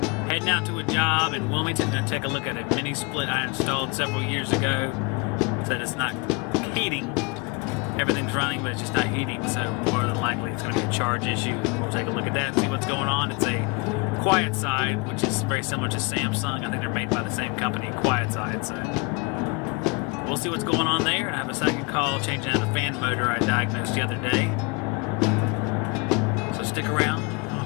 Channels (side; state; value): right; quieter; 28.5 dB